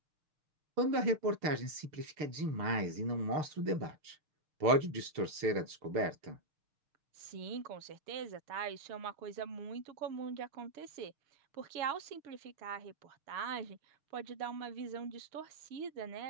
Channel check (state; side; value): late; left; 6.7 ms